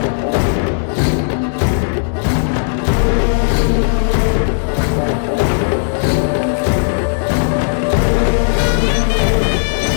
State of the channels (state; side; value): silent; right; digital silence